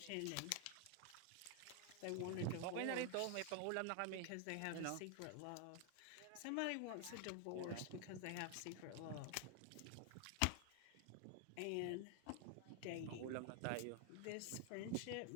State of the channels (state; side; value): different; both; correlation 0.00